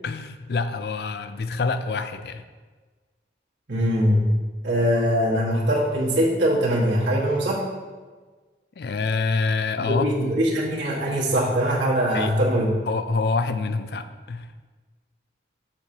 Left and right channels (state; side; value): normal; both; correlation 0.51